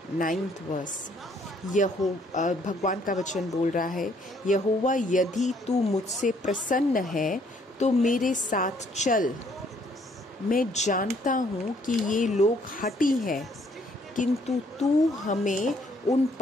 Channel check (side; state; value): both; normal; correlation 0.65